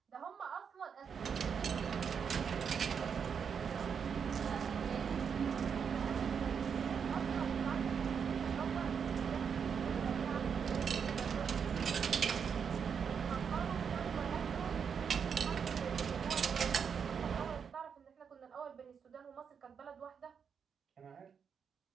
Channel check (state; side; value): quieter; left; 6.8 dB